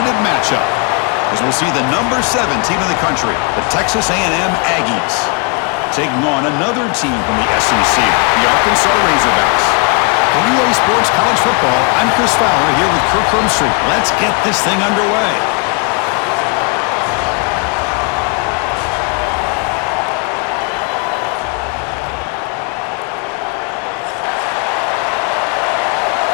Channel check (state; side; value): quieter; right; 34.4 dB